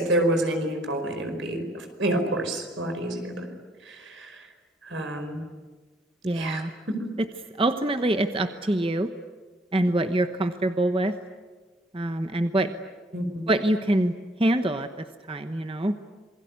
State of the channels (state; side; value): normal; both; correlation 0.65